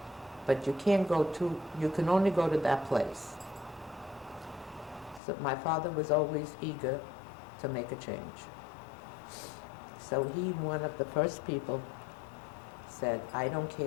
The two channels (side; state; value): right; drops out; at 5.2 s